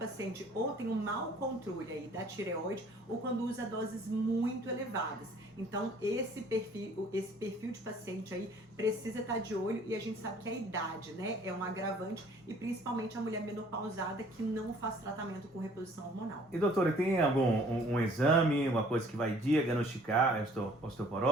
ou tem um mau controle aí da tireoide ou quando usa doses muito elevadas. Então esse perfil de paciente aí precisa estar de olho, e a gente sabe que a idade, né, é um agravante, e principalmente a mulher menopausada que não faz tratamento com reposição hormonal. E doutora, tem algum um exame, uma coisa que vai diagnosticar a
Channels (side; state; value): both; normal; correlation 0.55